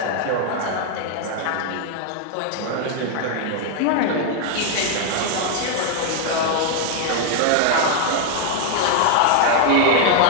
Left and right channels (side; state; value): both; different; correlation 0.00